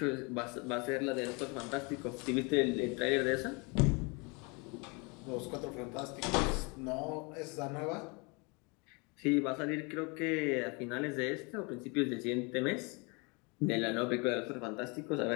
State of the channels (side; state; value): right; quieter; 30.2 dB